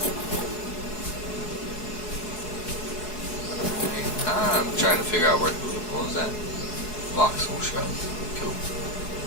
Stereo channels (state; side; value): late; right; 4.7 ms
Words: I'm trying to figure out what was that? Voxel shrub. Cool.